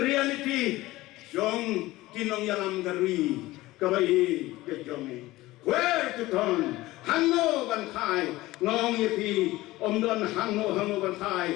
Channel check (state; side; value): quieter; right; 18.3 dB